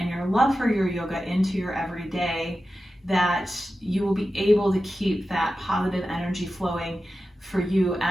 your love for your yoga into your everyday, that you will be able to keep that positive energy flowing for you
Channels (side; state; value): both; normal; correlation 0.92